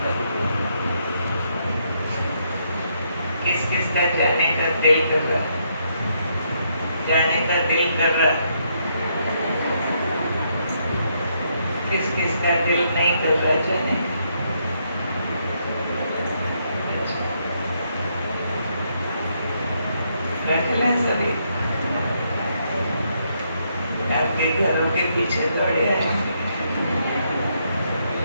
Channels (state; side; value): inverted; both; correlation -0.75